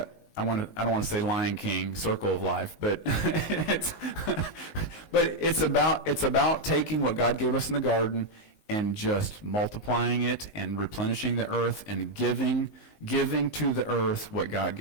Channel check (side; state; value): right; late; 19 ms